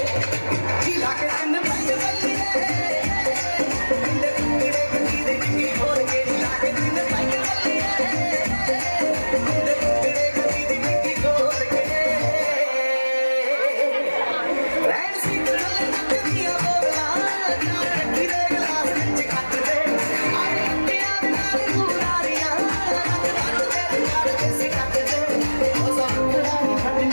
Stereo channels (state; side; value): inverted; both; correlation -1.00